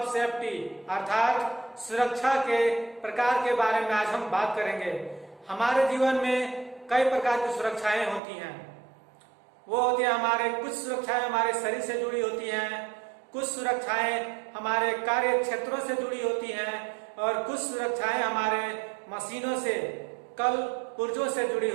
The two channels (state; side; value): drops out; left; at 8.2 s